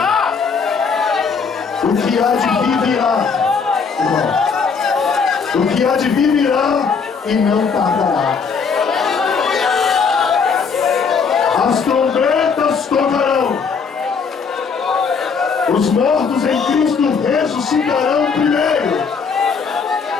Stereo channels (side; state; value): right; quieter; 5.6 dB